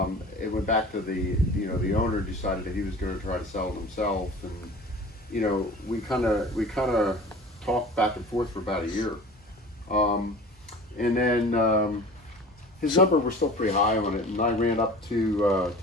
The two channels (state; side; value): normal; both; correlation 0.41